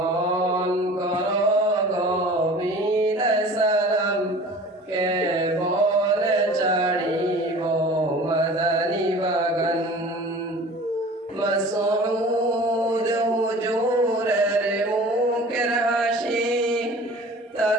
কর গভীর সালাম কেবলে ছাড়িব মাদানী বাগান মাসউদ হুজুরের মুখের হাসি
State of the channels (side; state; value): both; normal; correlation 0.43